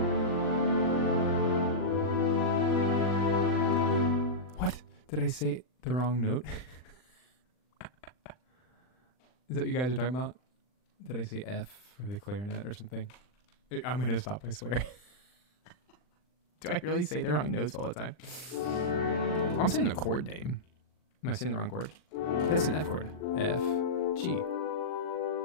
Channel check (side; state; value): right; late; 39 ms